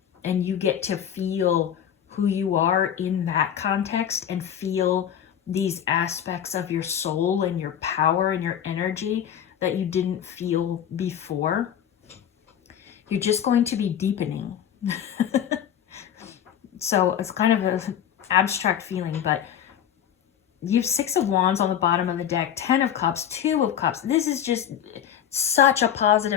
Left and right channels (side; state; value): right; quieter; 9.4 dB